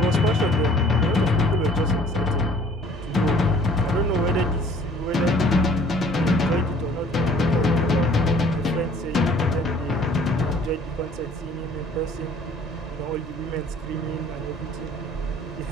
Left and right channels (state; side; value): normal; both; correlation 0.54